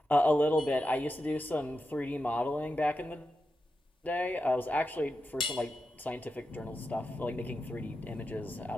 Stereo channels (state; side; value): normal; both; correlation 0.89